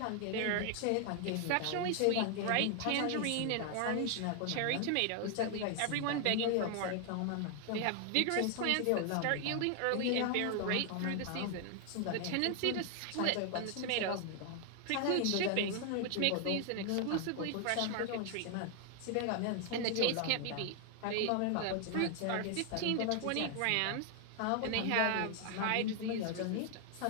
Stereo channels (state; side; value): different; both; correlation 0.00